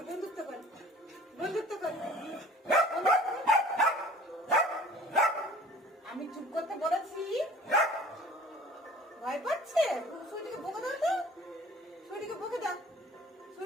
বন্ধুত্ব কর, বন্ধুত্ব কর। আমি চুপ করতে বলেছি, ভয় পাচ্ছে। সুইটিকে বকে দাও তো, সুইটিকে বকে দাও,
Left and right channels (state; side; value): normal; both; correlation 0.47